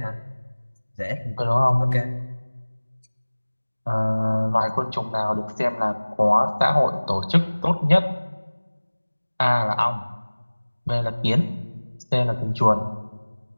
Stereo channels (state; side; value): inverted; both; correlation -1.00